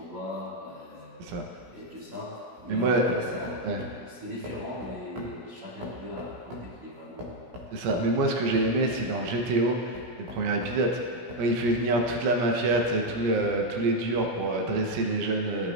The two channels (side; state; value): left; late; 17 ms